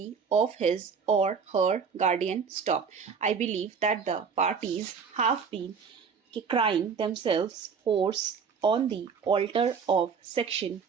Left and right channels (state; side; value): quieter; left; 6.0 dB